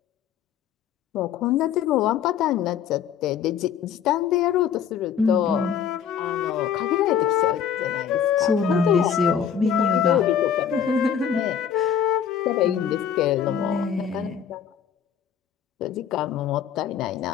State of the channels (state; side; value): quieter; right; 8.2 dB